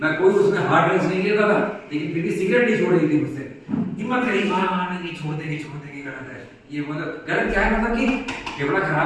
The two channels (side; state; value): both; identical; correlation 1.00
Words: मैं कोई उसमें हार्ड ड्रग्स नहीं लेता था, लेकिन फिर भी सिगरेट नहीं छोड़ रही थी मुझसे। हिम्मत रही, नहीं छोड़ देगी गलत है ये, मतलब गलत क्या है, मतलब कि फेफड़ा